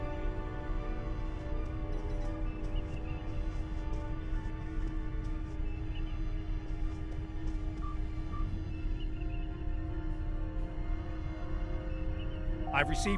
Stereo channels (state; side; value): identical; both; correlation 1.00